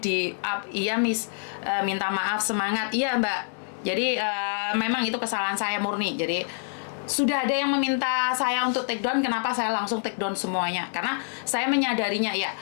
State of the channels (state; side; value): silent; right; 61 dB below the other